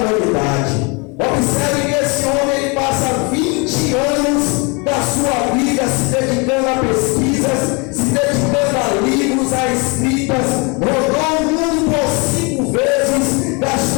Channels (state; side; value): quieter; right; 30.4 dB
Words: Observe que esse homem, ele passa 20 anos da sua vida se dedicando a pesquisas, se dedicando a livros, a escritas, rodou o mundo por 5 vezes,